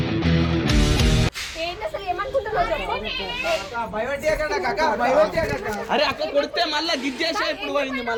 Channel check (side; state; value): both; identical; correlation 1.00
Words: అరే అక్క కొడితే మళ్ళా గిజ్జేసా ఇప్పుడు పోయింది.